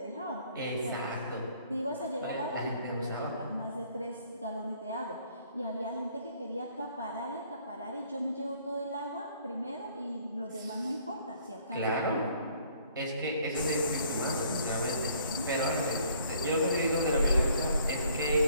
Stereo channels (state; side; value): inverted; both; correlation -0.61